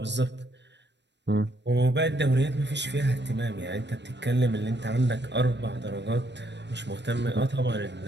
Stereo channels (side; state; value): left; late; 0.51 ms